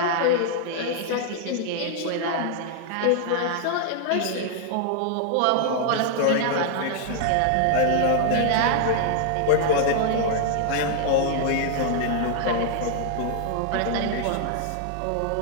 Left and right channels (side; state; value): both; different; correlation -0.01